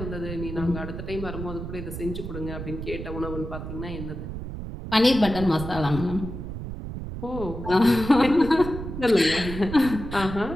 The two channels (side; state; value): right; noise; rumble, 8 dB below the sound